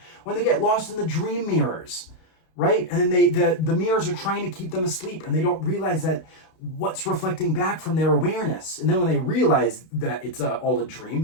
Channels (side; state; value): right; late; 32 ms